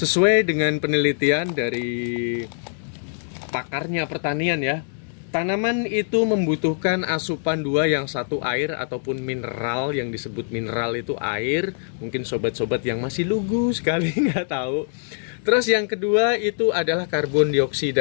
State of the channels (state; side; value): silent; right; 62 dB below the other